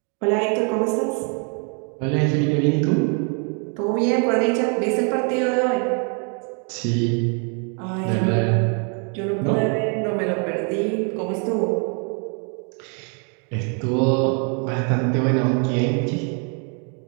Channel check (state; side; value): quieter; left; 39.5 dB